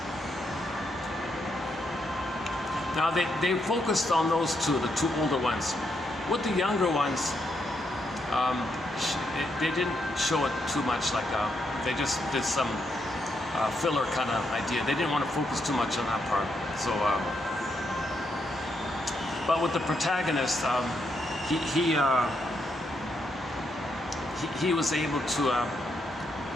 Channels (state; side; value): normal; both; correlation 0.79